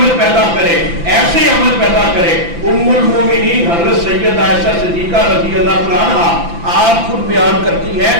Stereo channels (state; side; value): late; left; 5.9 ms